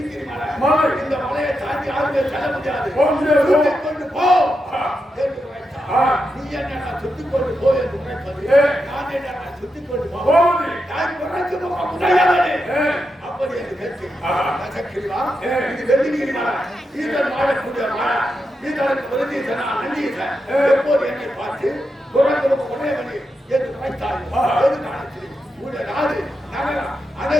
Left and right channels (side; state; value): both; normal; correlation 0.86